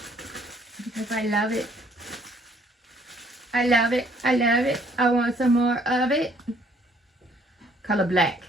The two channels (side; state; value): both; normal; correlation 0.63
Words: because I love it. I love it. I love it. I want some more of it. Color black.